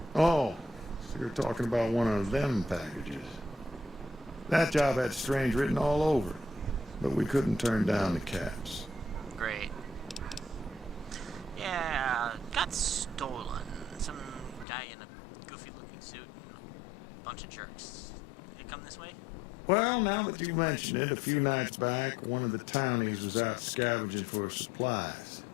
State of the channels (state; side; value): drops out; right; at 14.7 s